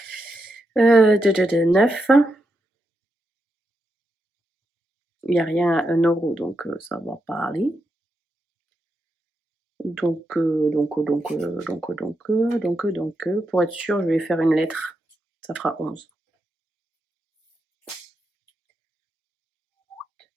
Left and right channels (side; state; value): both; normal; correlation 0.84